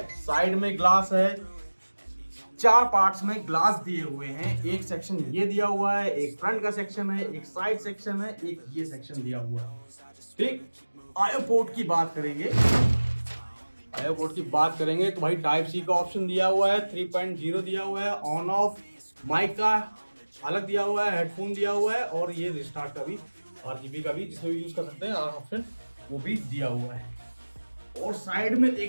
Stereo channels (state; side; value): inverted; both; correlation -1.00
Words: साइड में ग्लास है, 4 पार्ट्स में ग्लास दिए हुए हैं। एक सेक्शन ये दिया हुआ है, एक फ्रंट का सेक्शन है, एक साइड सेक्शन है, एक ये सेक्शन दिया हुआ है, ठीक। आईओ पोर्ट की बात करेंगे, तो भाई टाइप सी का ऑप्शन दिया हुआ है, 3.0 दिया हुआ है, ऑन ऑफ माइक का अलग दिया हुआ है, हेडफोन दिया हुआ है, और ये रिस्टार्ट का भी RGB का भी जिसमें भी यूज कर सकते हैं ऑप्शन वो भी दिया हुआ है। और साइड में